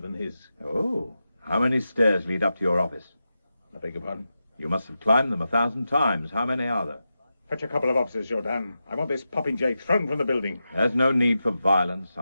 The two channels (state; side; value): inverted; both; correlation -0.90